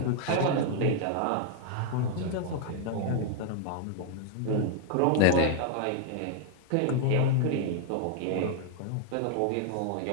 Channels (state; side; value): different; both; correlation 0.00